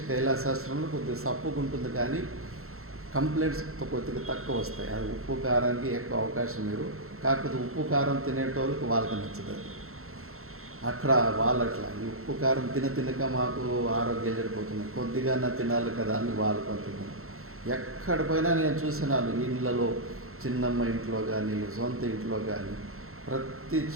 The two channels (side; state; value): left; late; 0.62 ms